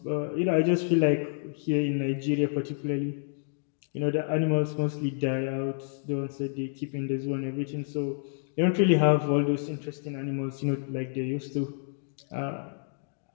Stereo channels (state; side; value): silent; right; digital silence